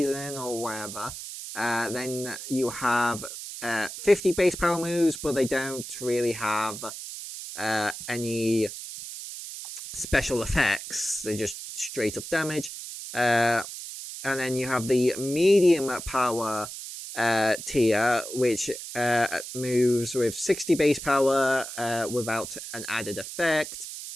or whatever. Then you have 50 base power moves, but they don't really have any special effects. They just straight up damage. And then you have the medium power tier, which moves with 60 base power without an added effect.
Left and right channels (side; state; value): right; noise; hiss, 10 dB below the sound